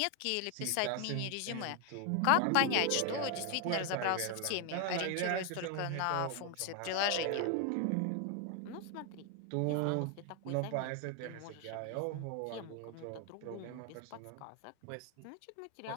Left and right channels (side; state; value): both; different; correlation 0.00